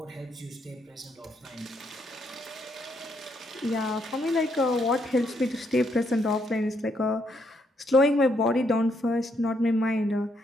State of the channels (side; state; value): both; normal; correlation 0.75